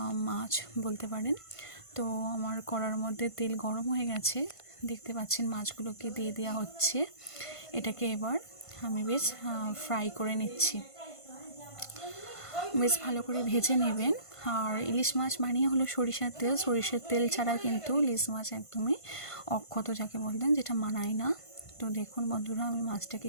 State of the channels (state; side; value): late; right; 1.5 ms